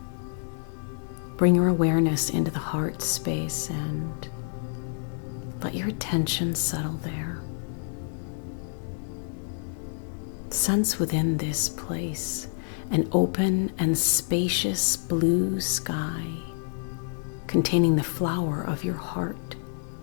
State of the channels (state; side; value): silent; right; 59 dB below the other